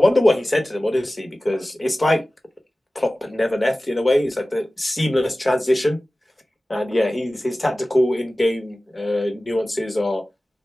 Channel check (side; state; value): both; normal; correlation 0.97